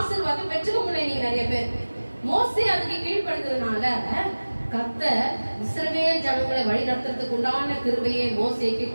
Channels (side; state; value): both; inverted; correlation -1.00